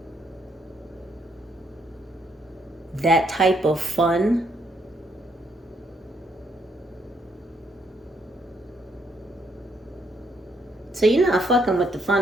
That type of fun. So you're not fucking with the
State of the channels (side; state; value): both; normal; correlation 0.73